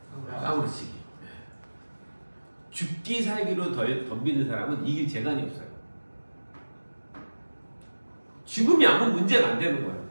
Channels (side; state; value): both; inverted; correlation -1.00